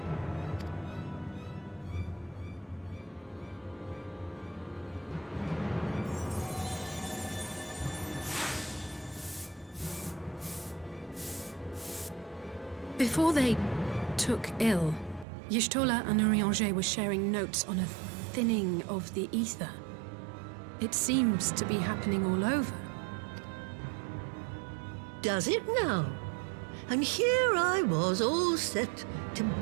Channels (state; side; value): drops out; left; at 15.2 s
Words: Before they took ill, Y'shtola and Urianger were sharing notes on a thinning of the ether. It seems to be happening all over. Does it now? And here I was, all set to